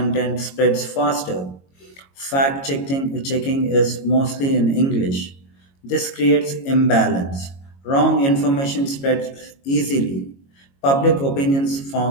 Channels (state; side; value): late; right; 22 ms